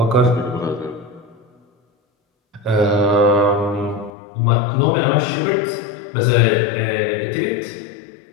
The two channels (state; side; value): drops out; right; at 4.1 s